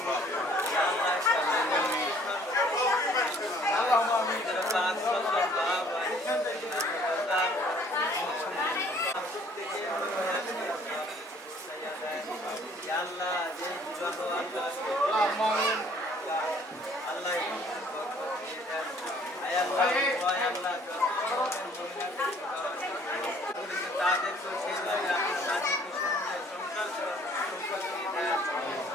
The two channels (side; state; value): both; normal; correlation 0.58